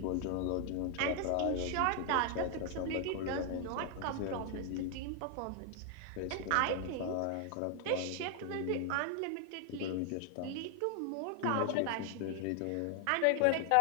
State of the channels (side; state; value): both; different; correlation 0.00